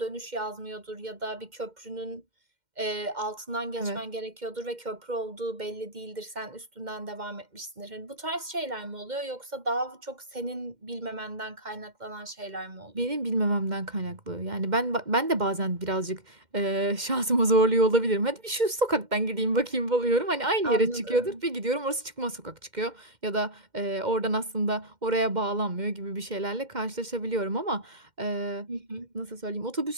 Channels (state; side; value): late; left; 2.1 ms